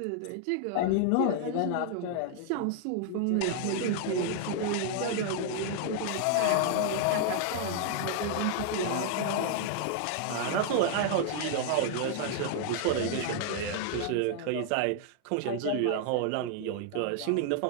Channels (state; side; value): different; both; correlation 0.00